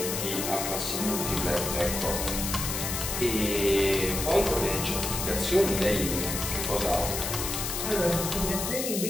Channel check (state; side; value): noise; left; hiss, 3 dB below the sound